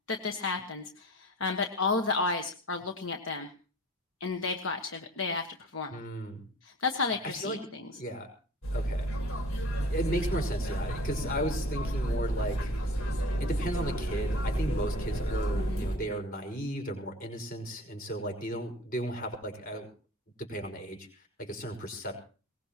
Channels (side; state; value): both; normal; correlation 0.43